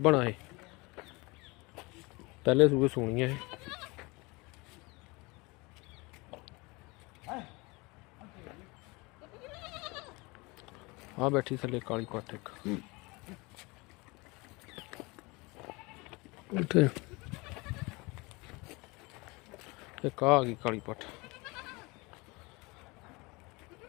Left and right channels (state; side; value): quieter; right; 25.4 dB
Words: ਆ। ਇਹ ਪਹਿਲੇ ਸੂਏ ਸੂਣੀ ਆ। ਇਹ ਆ ਬੈਠੀ ਥੱਲੇ ਕਾਲੀ ਪੱਠ ਇੱਕ। ਉੱਥੇ ਇੱਕ ਆ ਗਈ ਕਾਲੀ ਪੱਠ।